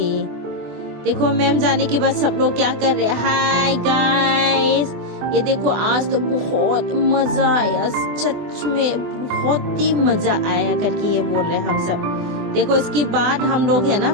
देखो मैम जाने के बाद सब लोग क्या कर रहे हैं। हाय गाइस, ये देखो आज तो बहुत मजा आया, सच में बहुत ही मजा आया करके ये बोल रहे हैं हम सब। देखो इसके बाद हम लोग है ना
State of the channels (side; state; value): left; late; 24 ms